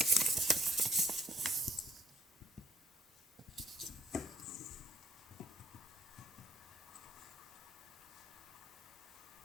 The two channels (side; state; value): both; normal; correlation 0.65